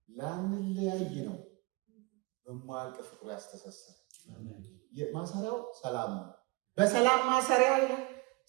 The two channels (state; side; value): quieter; left; 24.1 dB